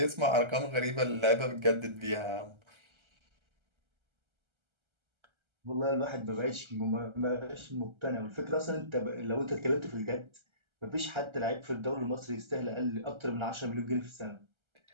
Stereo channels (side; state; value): left; late; 1.3 ms